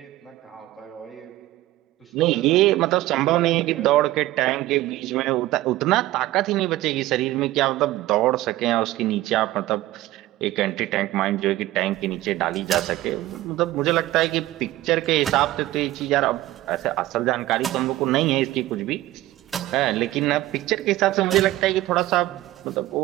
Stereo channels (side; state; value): left; quieter; 16.1 dB